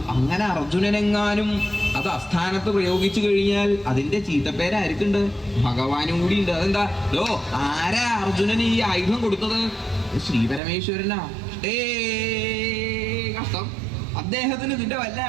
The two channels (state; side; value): drops out; left; at 10.6 s